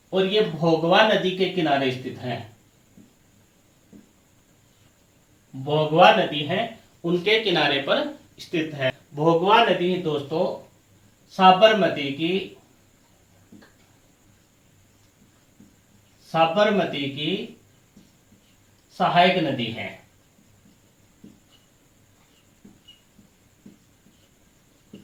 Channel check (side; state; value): both; identical; correlation 1.00